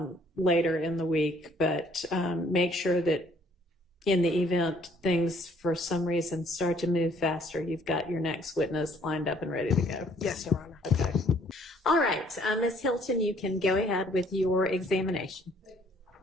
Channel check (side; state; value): both; normal; correlation 0.61